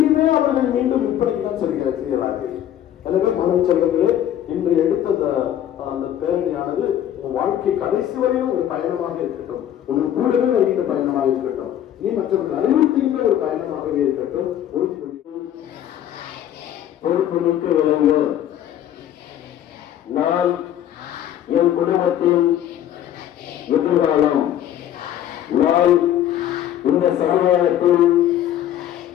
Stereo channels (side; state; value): right; quieter; 11.2 dB